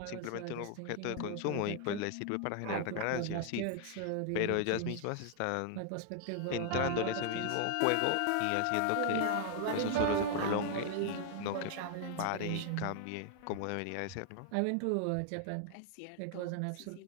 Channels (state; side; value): different; both; correlation 0.00